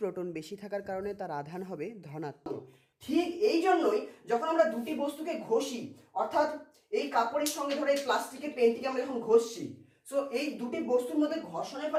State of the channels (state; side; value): identical; both; correlation 1.00